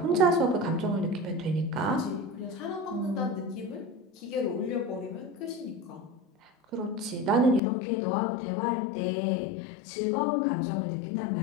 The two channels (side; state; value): right; drops out; at 7.6 s